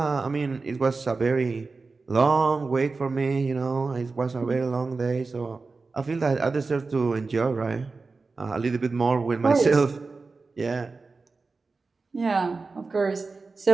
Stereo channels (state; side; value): quieter; left; 4.1 dB